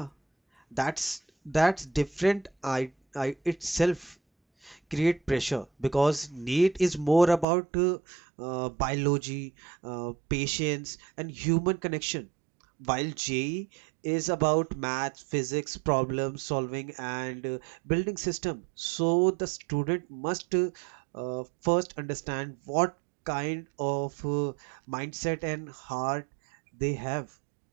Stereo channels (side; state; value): left; drops out; at 7.5 s